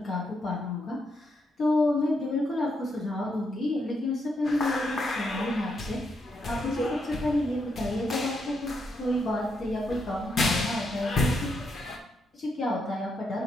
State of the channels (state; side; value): normal; both; correlation 0.79